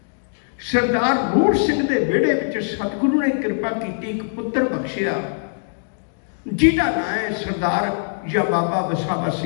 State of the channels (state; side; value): silent; right; digital silence